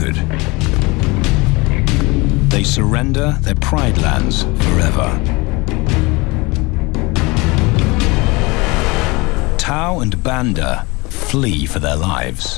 They surrender their pride lands forever. Tao and Banda flee for their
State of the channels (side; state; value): right; quieter; 25.1 dB